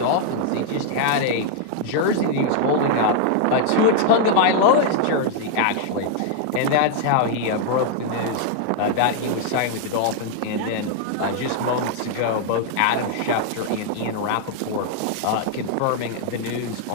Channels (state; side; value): different; both; correlation 0.00